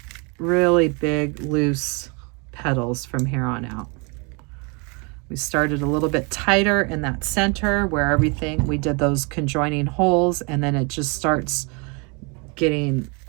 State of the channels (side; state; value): left; quieter; 31.9 dB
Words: really big, loose petals from here on out. We started a little bit tighter in that center where everything, we did those conjoining holes, and then it just starts getting